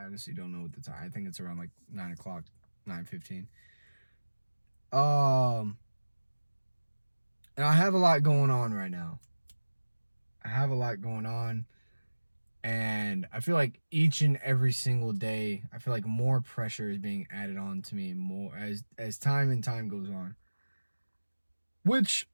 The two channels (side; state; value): both; inverted; correlation -1.00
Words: honestly don't know what the time. I think it's around like 9 o'clock, 9:15. And I have a lot going on right now. And I feel like each and every single day, I feel like more pressure is being added on to me more as time goes on. Which,